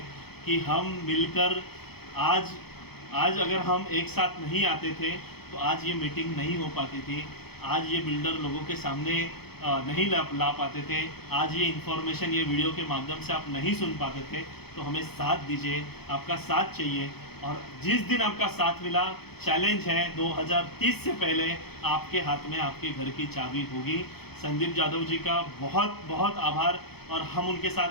कि हम मिलकर आज अगर हम एक साथ नहीं आते थे तो आज ये मीटिंग नहीं हो पाती थी, आज ये बिल्डर लोगों के सामने नहीं ला पाते थे, आज ये इन्फॉर्मेशन ये वीडियो के माध्यम से आप नहीं सुन पाते थे। तो हमें साथ दीजिए, आपका साथ चाहिए। और जिस दिन आपका साथ मिला, चैलेंज है 2030 से पहले आपके हाथ में आपके घर की चाबी होगी। संदीप जादव जी का बहुत बहुत आभार, और हम उनके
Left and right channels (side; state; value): right; late; 0.97 ms